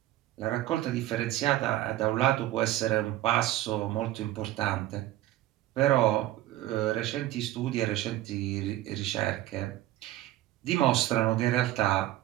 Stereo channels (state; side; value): quieter; left; 14.9 dB